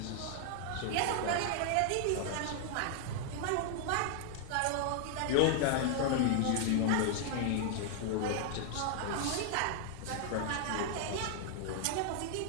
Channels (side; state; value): both; different; correlation 0.00